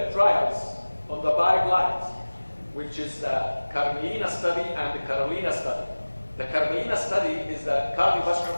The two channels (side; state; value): both; inverted; correlation -1.00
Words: trials on the guidelines, which is the Carmelina study and the Carolina study. The Carmelina study is the